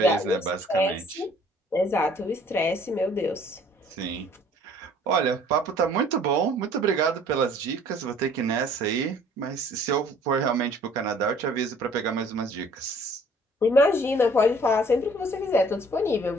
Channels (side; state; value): both; normal; correlation 0.56